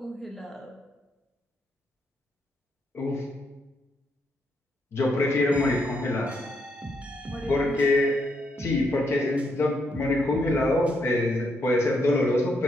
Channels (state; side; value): normal; both; correlation 0.77